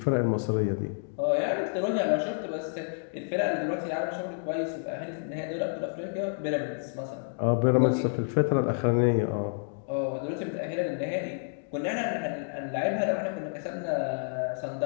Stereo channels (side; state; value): right; silent; digital silence